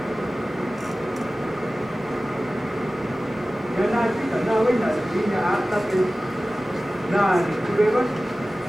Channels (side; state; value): both; normal; correlation 0.96